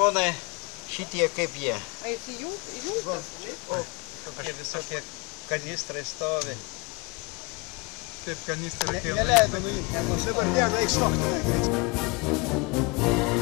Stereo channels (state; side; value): quieter; right; 28.5 dB